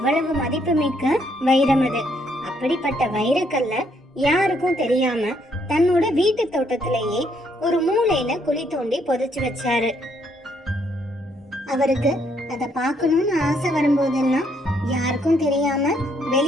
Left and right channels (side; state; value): both; normal; correlation 0.71